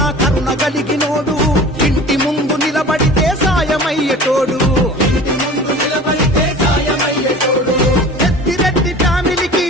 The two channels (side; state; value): both; normal; correlation 0.40